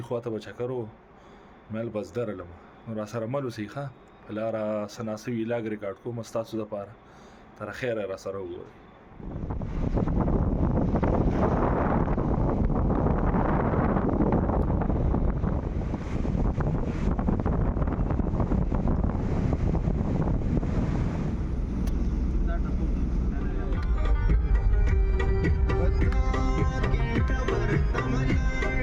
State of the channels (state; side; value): identical; both; correlation 1.00